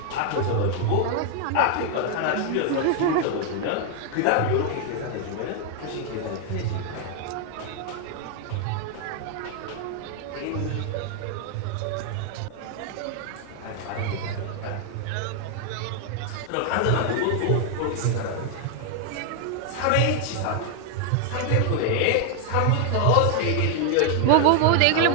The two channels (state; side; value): different; both; correlation 0.00